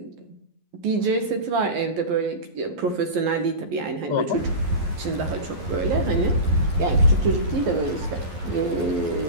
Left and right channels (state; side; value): late; left; 11 ms